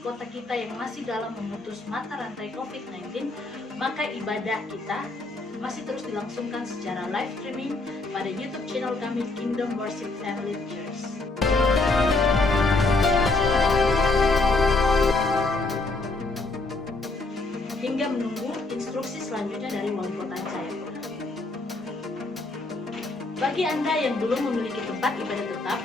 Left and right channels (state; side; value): quieter; right; 3.2 dB